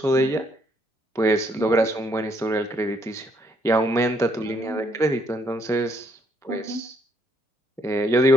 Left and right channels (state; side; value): normal; both; correlation 0.70